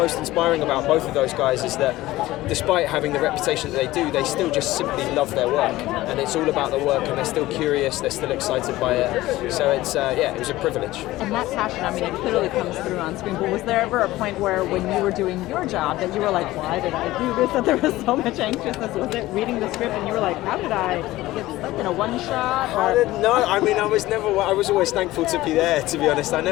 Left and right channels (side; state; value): right; quieter; 17.1 dB